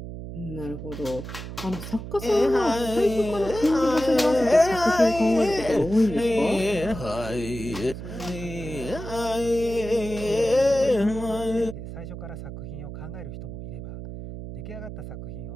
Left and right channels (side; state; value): right; noise; hum, 10 dB below the sound